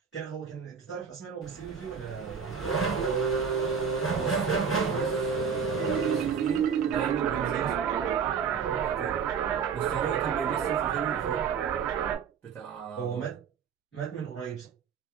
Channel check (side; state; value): left; quieter; 6.6 dB